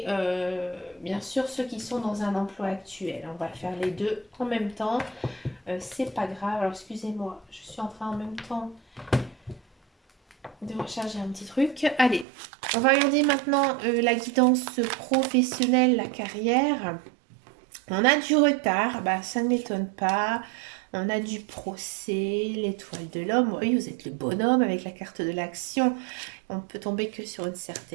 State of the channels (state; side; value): drops out; left; at 12.2 s